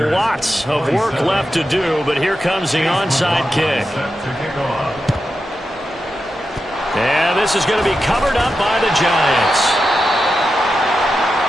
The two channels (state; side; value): normal; both; correlation 0.89